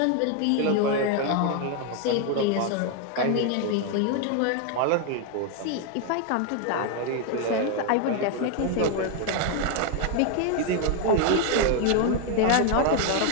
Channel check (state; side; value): different; both; correlation 0.01